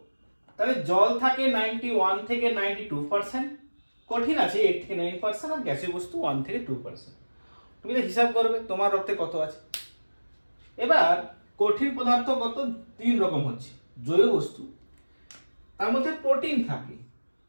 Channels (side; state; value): both; inverted; correlation -1.00